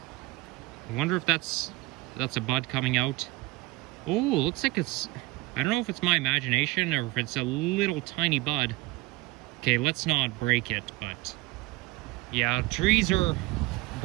I wonder if that's a bud coming out. Oh, looks like it's... I don't know if it's my imagination or if it's a little tiny bud. Okay, let's not break it, but... Yeah, trees are...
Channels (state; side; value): quieter; left; 20.8 dB